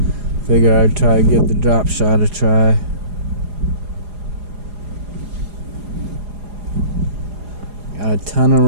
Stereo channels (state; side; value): late; left; 4.8 ms